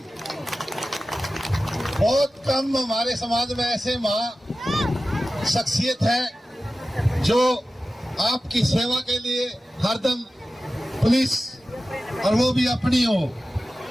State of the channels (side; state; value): both; normal; correlation 0.95